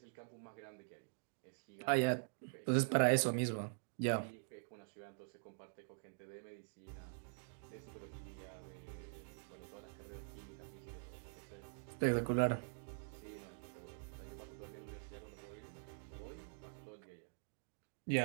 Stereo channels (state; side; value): silent; left; digital silence